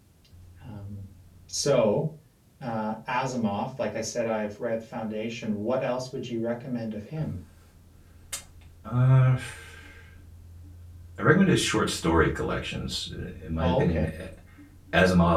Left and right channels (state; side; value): identical; both; correlation 1.00